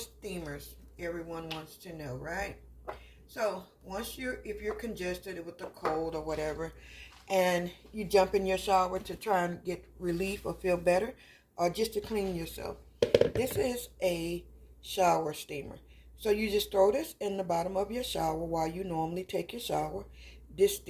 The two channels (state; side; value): identical; both; correlation 1.00